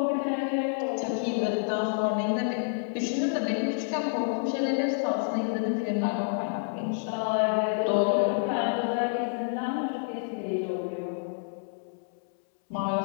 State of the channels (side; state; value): right; silent; 59 dB below the other